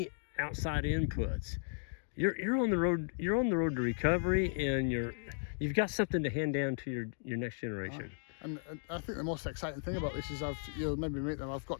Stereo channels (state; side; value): silent; right; digital silence